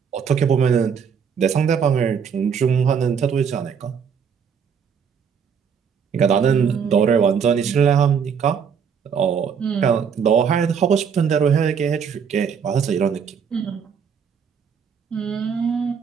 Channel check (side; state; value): left; quieter; 6.9 dB